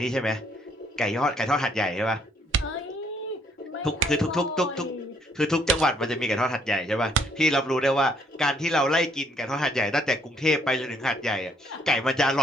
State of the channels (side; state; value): both; normal; correlation 0.67